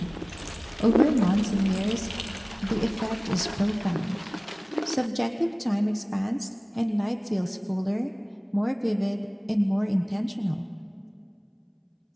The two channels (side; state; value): both; identical; correlation 1.00